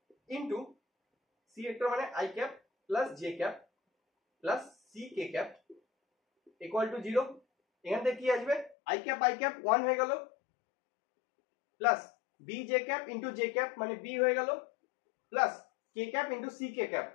into C vector মানে I cap plus J cap plus C K cap equal to 0। এখান থেকে কি আসবে? আই ক্যাপ 1 হয়ে গেল, plus B J cap into j cap মানে b হয়ে গেল, প্লাস কে ক্যাপ ইনটু সি কে ক্যাপ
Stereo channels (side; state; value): right; drops out; at 8.8 s